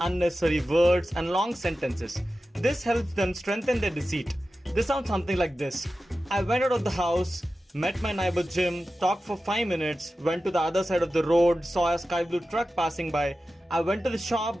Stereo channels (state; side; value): normal; both; correlation 0.93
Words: unnecessary words, and long sentences. This helps them strengthen their deceit. This sounds something like this. "I went out of the house, met my neighbor Jim, talked for 5 minutes, went to the other side of the road, saw a sky blue truck passing by. I went to the shop,